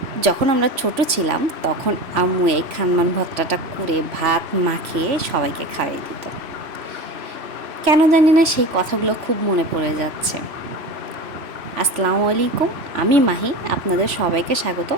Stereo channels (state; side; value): late; left; 3.0 ms